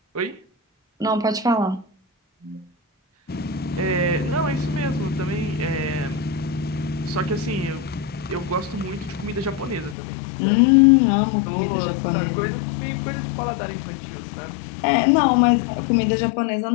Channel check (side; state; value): right; drops out; at 10.0 s